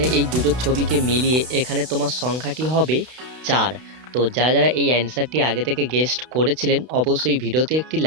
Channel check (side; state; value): left; late; 32 ms